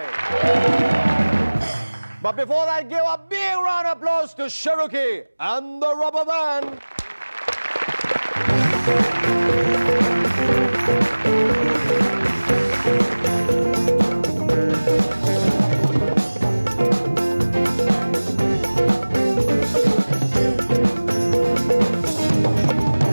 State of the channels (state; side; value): inverted; both; correlation -1.00